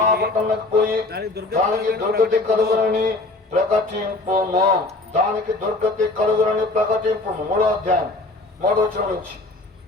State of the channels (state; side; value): quieter; right; 3.0 dB